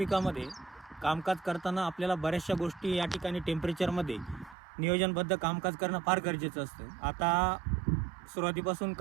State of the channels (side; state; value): left; drops out; at 4.5 s